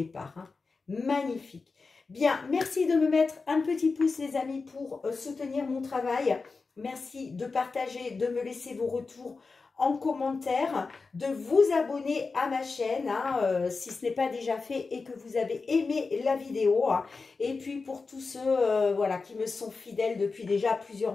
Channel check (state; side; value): quieter; right; 4.3 dB